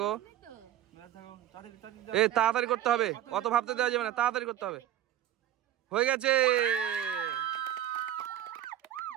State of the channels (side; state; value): left; quieter; 11.8 dB